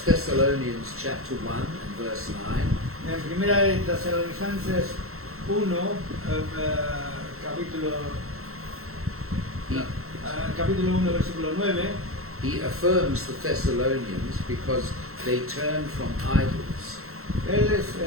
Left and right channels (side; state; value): left; late; 0.63 ms